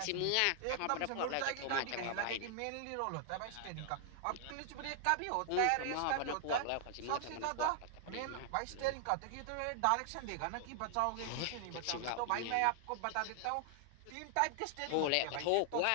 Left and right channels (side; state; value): both; different; correlation 0.00